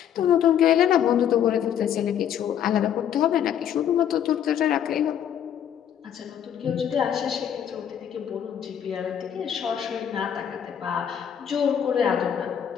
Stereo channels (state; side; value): quieter; right; 9.3 dB